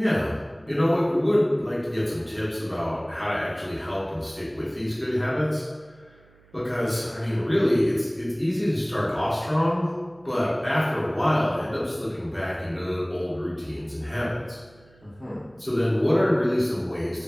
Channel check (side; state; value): right; noise; hum, 29 dB below the sound